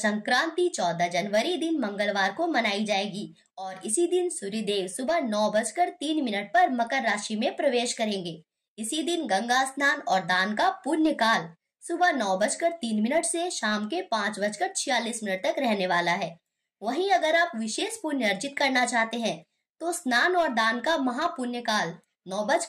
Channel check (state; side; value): identical; both; correlation 1.00